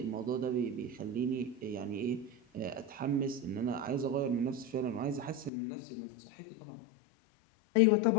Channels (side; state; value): right; drops out; at 5.5 s